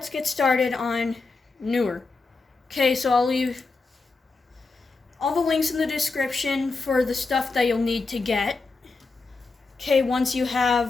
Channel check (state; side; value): quieter; right; 3.9 dB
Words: get started on newer. Okay, so I'll leave all the links in the description for the stuff that you'll need to get. Okay, once you